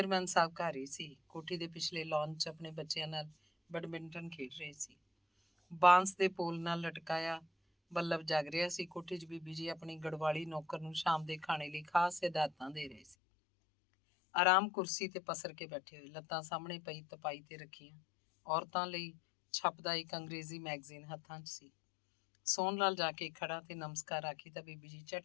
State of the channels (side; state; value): right; drops out; at 13.2 s